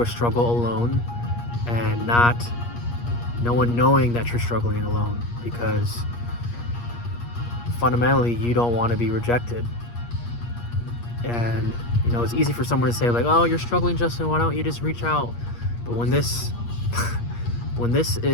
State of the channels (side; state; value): right; late; 8.5 ms